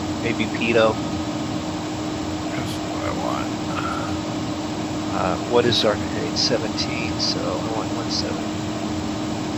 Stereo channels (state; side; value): identical; both; correlation 1.00